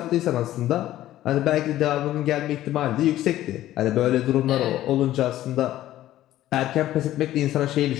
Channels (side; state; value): right; quieter; 14.0 dB